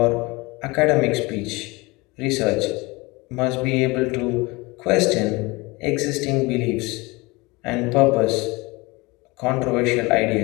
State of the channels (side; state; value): right; quieter; 24.2 dB